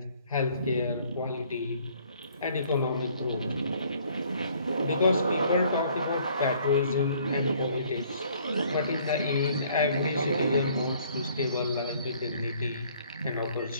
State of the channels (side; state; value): both; inverted; correlation -0.60